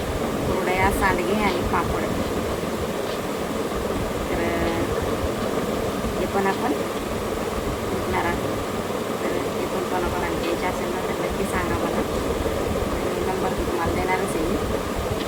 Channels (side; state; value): both; identical; correlation 1.00